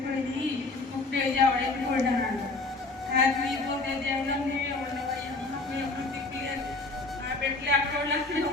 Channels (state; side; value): quieter; right; 3.4 dB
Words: ముప్పేసి ఆవిడైతే కొట్టాను. హ్యాపీ పోతే దేవుడు ఎప్పుడు తిప్పలేదు. నా బిడ్డలు అక్కడ అక్కడే